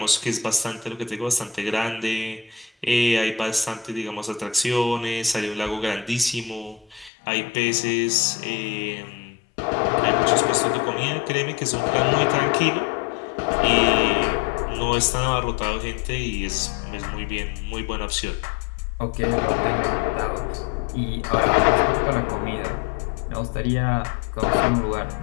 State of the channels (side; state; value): right; drops out; at 7.1 s